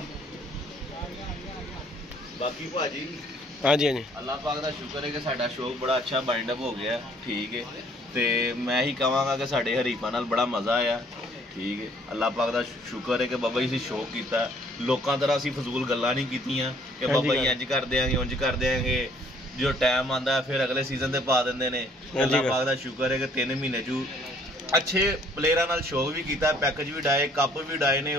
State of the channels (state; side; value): normal; both; correlation 0.60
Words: बाकी भाजी हाँ जी अल्लाह पाक दा शुक्र है कि साडा शौक बड़ा अच्छा बाइंड अप हो गया ठीक है ते मैं ही कहांगा कि साडे हरीफां नाल बड़ा मज़ा आया ठीक है अल्लाह पाक दा शुक्र है कि बाबा जी शौक कीता लोकां तरह असीं फजूल गल्लां नहीं कीतियां कि बाबा जी इंज कर देंगे उंज कर देंगे जो टाइम आंदा है फिर अगले सीजन ते पा दिंदे ने अल्लाह पाक दा शुक्र है कि 3 महीने चू अच्छे प्लेयरां नाल शौक भी कीता पैकेज भी डाए कप भी डाए ने